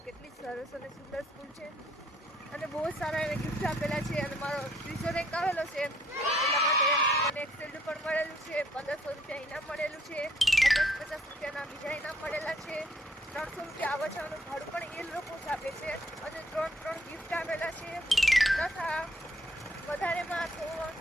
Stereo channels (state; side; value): normal; both; correlation 0.66